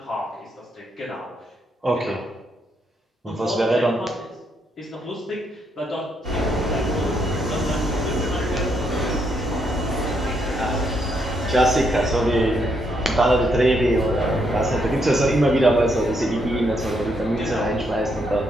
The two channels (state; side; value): normal; both; correlation 0.76